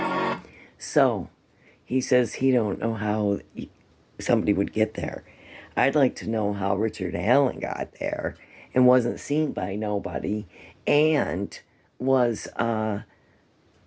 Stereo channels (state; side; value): identical; both; correlation 1.00